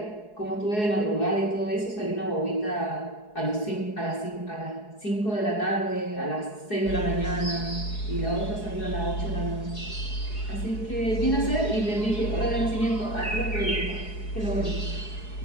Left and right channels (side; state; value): right; late; 4.7 ms